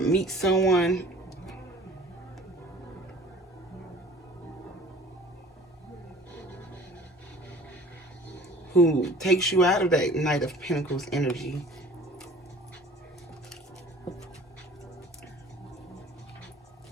someone who takes you out of that Knight of Pentacles energy.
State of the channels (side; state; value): both; normal; correlation 0.48